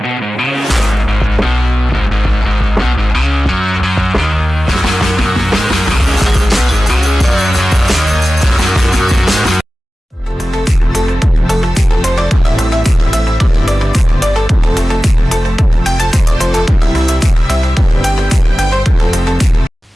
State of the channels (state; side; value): normal; both; correlation 0.95